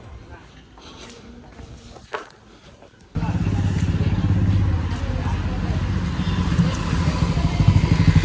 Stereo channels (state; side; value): identical; both; correlation 1.00